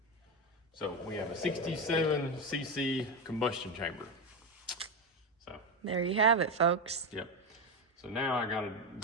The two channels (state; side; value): normal; both; correlation 0.15